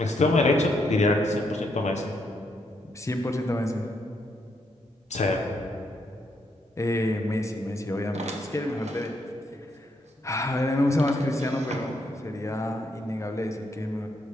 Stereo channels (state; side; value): normal; both; correlation 0.76